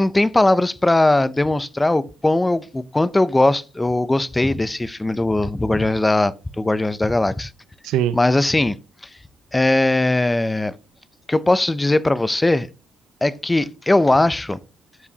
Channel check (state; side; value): normal; both; correlation 0.97